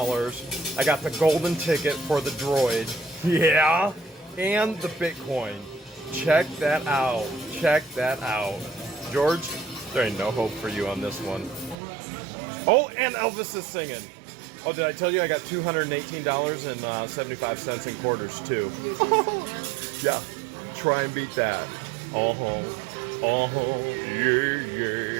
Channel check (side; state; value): left; drops out; at 11.8 s